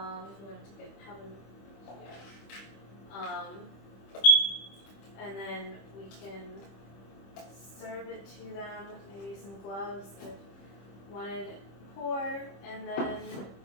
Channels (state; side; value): late; right; 25 ms